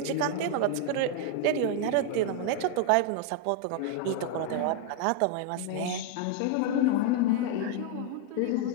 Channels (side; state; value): both; different; correlation 0.00